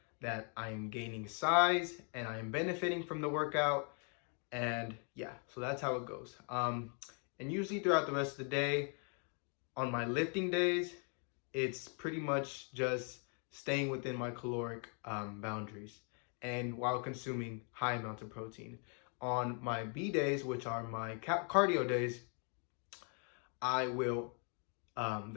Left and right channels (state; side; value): quieter; right; 39.8 dB